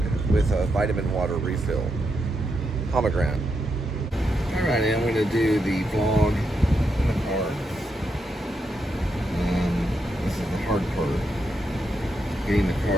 with a vitamin water refill. Pomegranate. All right, I'm going to do the vlog in the car. This is the hard part, getting the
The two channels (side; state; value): both; normal; correlation 0.83